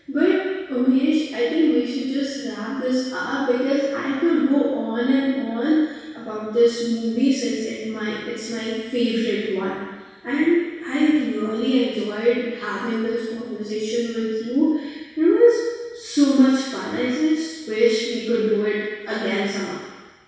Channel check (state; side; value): identical; both; correlation 1.00